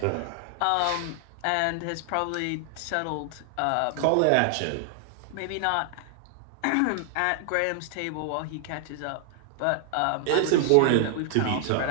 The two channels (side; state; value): both; different; correlation 0.00